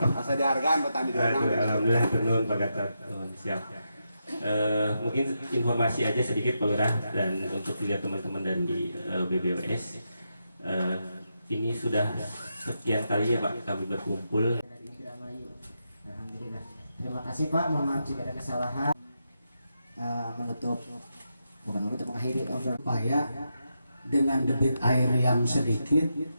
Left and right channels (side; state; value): both; inverted; correlation -0.85